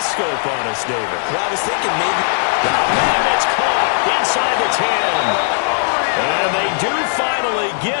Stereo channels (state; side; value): silent; right; 68 dB below the other